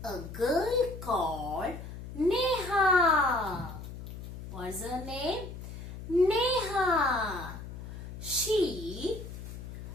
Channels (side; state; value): left; noise; hum, 11 dB below the sound